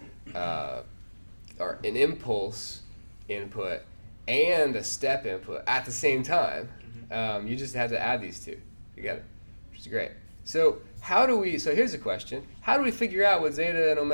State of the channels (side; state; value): both; inverted; correlation -1.00